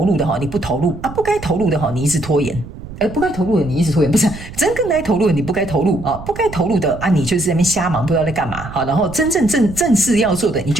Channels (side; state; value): right; noise; rumble, 13 dB below the sound